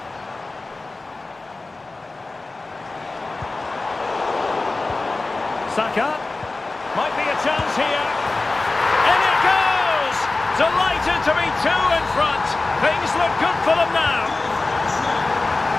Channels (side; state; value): right; quieter; 3.3 dB